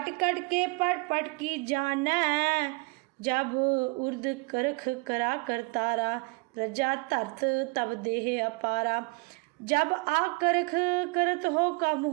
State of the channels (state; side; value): quieter; left; 28.0 dB